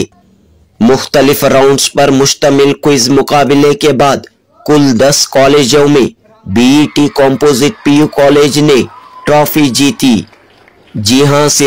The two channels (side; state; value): both; identical; correlation 1.00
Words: मुख्तलिफ राउंड्स पर मुश्तमिल क्विज मुकाबले के बाद कुल 10 कॉलेजों में बीईटी कंपोजिट पीयू कॉलेज ने ट्रॉफी जीती। जी हां,